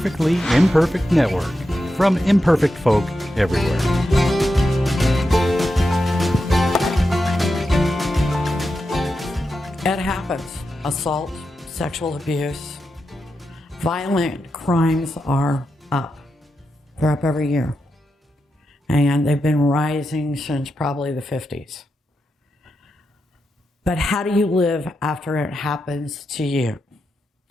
Imperfect Network, from imperfect folk everywhere. It happens. Assault, sexual abuse, violent crimes are up. They're up every year. And they've been rising since probably the 50s. But how do you live after it happens to you?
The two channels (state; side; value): normal; both; correlation 0.88